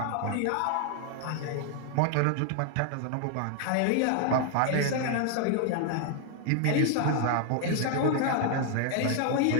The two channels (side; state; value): both; different; correlation 0.00